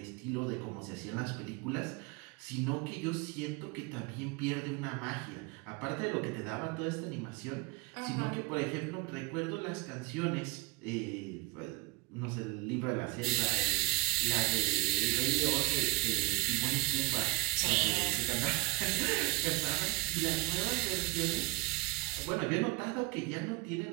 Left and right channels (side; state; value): left; quieter; 23.1 dB